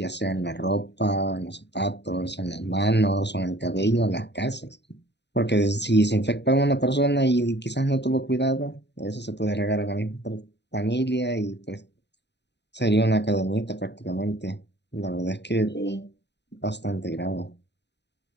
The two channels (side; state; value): right; late; 0.50 ms